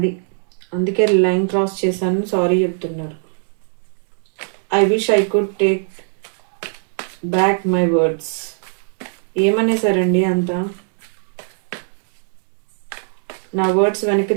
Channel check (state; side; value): silent; left; digital silence